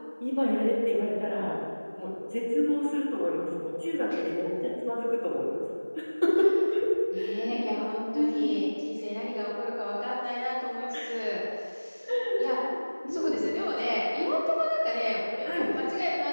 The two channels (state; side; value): inverted; both; correlation -1.00